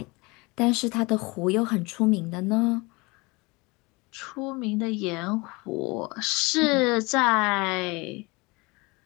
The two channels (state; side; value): quieter; right; 25.4 dB